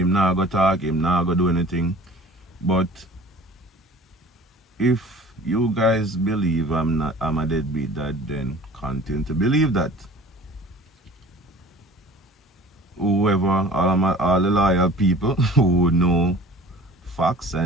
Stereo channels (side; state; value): both; normal; correlation 0.45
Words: not go talk, him not go do anything. But if you guys believe I'm a deadbeat dad, then continue to believe that. Whoever, all the loyal people who know facts